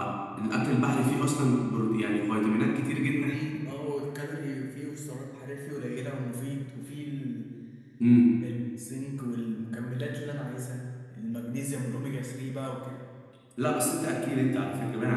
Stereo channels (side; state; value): both; identical; correlation 1.00